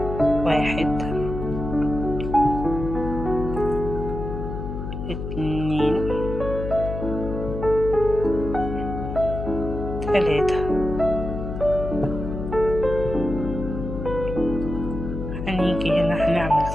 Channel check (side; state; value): left; noise; hum, 6 dB below the sound